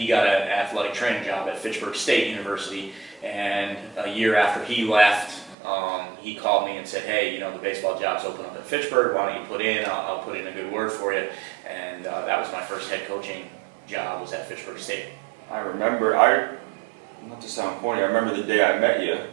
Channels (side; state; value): left; drops out; at 5.6 s